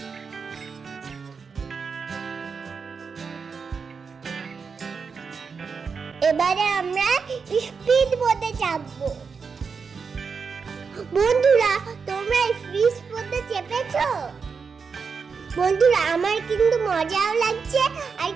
এবারে আমরা স্পিড বোটে চাপবো। বন্ধুরা, তোমরা স্পিড বোটে চেপেছো? বন্ধুরা, আমার কিন্তু মজাও লাগছে আর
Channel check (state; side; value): quieter; left; 5.5 dB